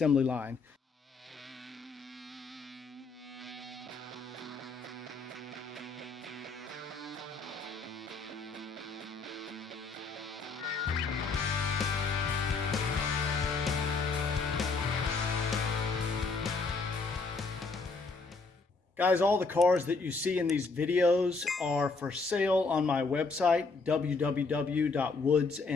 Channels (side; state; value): right; quieter; 4.1 dB